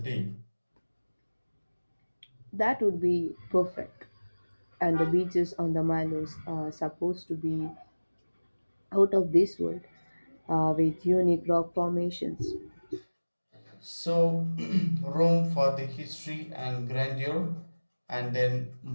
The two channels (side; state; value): both; inverted; correlation -1.00